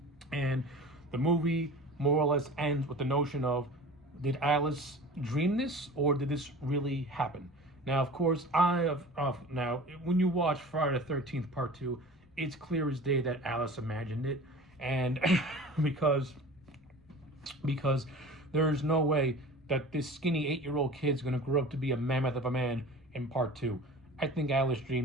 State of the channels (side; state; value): both; normal; correlation 0.39